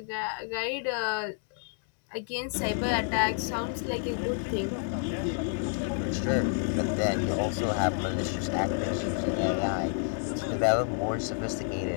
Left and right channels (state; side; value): silent; right; 58 dB below the other